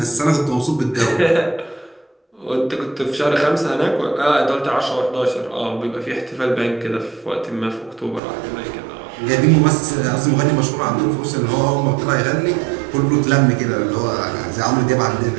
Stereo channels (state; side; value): drops out; left; at 8.2 s